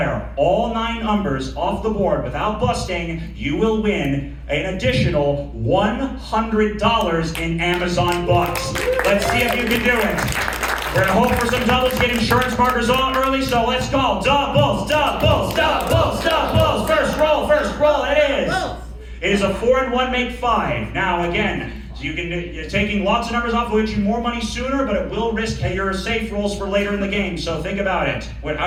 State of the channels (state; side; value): identical; both; correlation 1.00